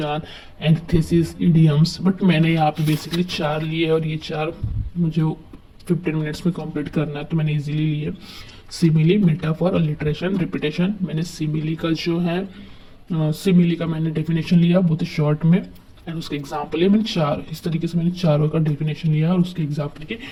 antithesis, idioms, but मैंने यहाँ पे बेसिकली 4 लिए और ये 4 मुझे 15 मिनट्स में कंप्लीट करना है तो मैंने इजीली लिए। Simile, metaphor, alliteration, repetition. मैंने सिमिली का जो है सिमिली का मैंने डेफिनेशन लिया बहुत ही शॉर्ट में, एंड उसके एग्जाम्पल है मैंने 4। इस तरीके से मैंने चारों का डेफिनेशन लिया और उसके एग्जाम्पल के,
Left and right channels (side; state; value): both; identical; correlation 1.00